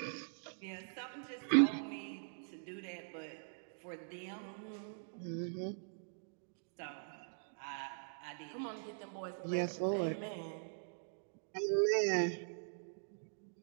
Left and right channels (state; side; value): silent; left; digital silence